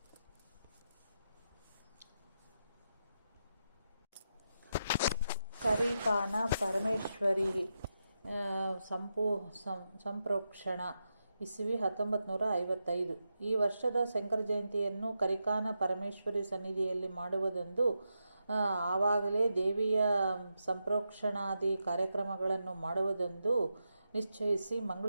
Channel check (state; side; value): inverted; both; correlation -0.87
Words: ಕರಿಕಾನ ಪರಮೇಶ್ವರಿ ಸಂಪ್ರೋಕ್ಷಣ ಇಸವಿ 1955. ಈ ವರ್ಷದ ಶಂಕರ ಜಯಂತಿಯನ್ನು ಕರಿಕಾನ ಪರಮೇಶ್ವರಿ ಸನ್ನಿಧಿಯಲ್ಲಿ ಮಾಡುವುದೆಂದು ಆವಾಗಲೇ ದೇವಿಯ ಸಂಪ್ರೋಕ್ಷಣಾದಿ ಕಾರ್ಯಕ್ರಮಗಳನ್ನು ಮಾಡುವುದೆಂದು ನಿಶ್ಚಯಿಸಿ